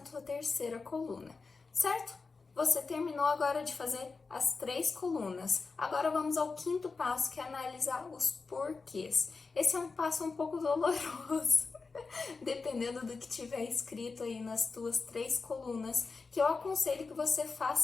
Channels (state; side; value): quieter; right; 4.4 dB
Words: terceira coluna, certo? Você terminou agora de fazer as 3 colunas. Agora vamos ao quinto passo, que é analisar os porquês. Esse é um passo um pouco doloroso, dependendo do que tiver escrito aí nas tuas 3 colunas, que eu aconselho que você